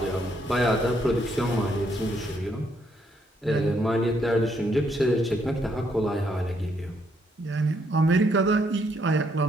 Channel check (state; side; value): normal; both; correlation 0.73